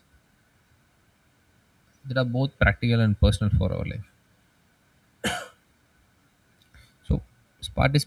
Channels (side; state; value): both; identical; correlation 1.00